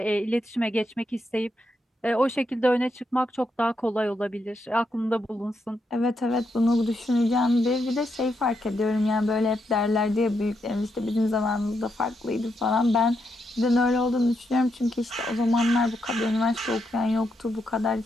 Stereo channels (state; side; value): normal; both; correlation 0.81